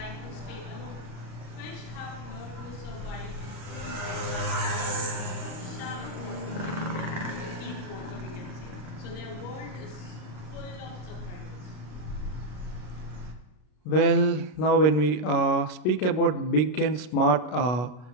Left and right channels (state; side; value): late; right; 33 ms